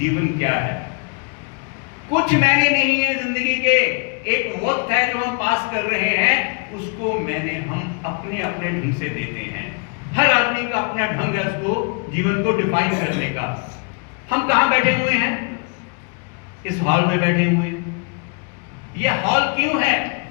क्या है। कुछ मैंने नहीं है जिंदगी के। एक वक्त है जो हम पास कर रहे हैं, उसको मैंने हम अपने अपने ढंग से देते हैं। हर आदमी का अपना ढंग है उसको जीवन को डिफाइन करने का। हम कहां बैठे हुए हैं? इस हॉल में बैठे हुए हैं। यह हॉल क्यों है?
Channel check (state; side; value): quieter; right; 37.5 dB